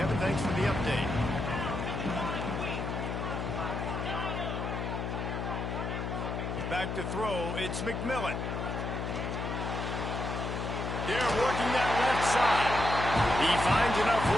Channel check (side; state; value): left; noise; hum, 3 dB below the sound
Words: thanks for the update. Back to throw, it's McMillan. They're working that left side. He finds enough